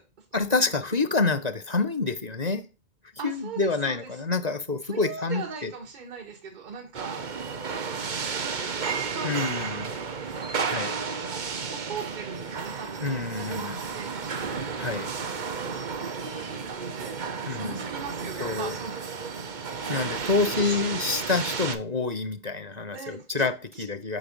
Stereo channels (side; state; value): left; late; 1.9 ms